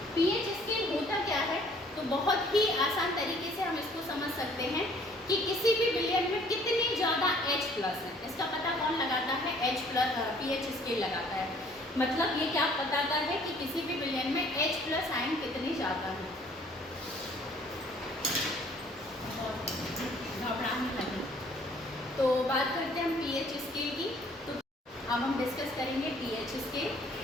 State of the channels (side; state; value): both; normal; correlation 0.58